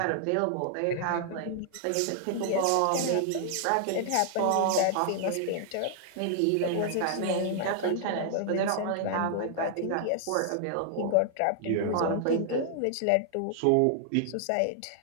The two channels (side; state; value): both; different; correlation -0.01